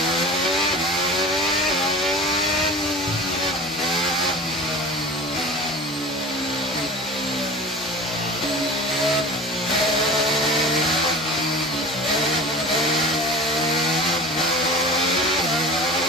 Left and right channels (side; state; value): both; normal; correlation 0.36